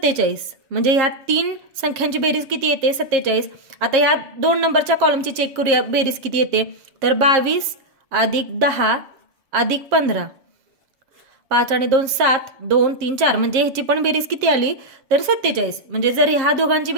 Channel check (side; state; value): left; late; 7.5 ms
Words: म्हणजे ह्या 3 संख्यांची बेरीज किती येते 47. आता या 2 नंबरच्या कॉलमची चेक करूया बेरीज किती येते तर 22 अधिक 10 अधिक 15 5 आणि 2 7 2 3 4 म्हणजे ह्याची पण बेरीज किती आली तर 47. म्हणजे जर ह्या दोघांची